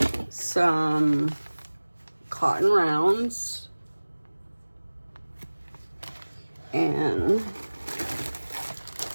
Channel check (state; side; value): inverted; both; correlation -1.00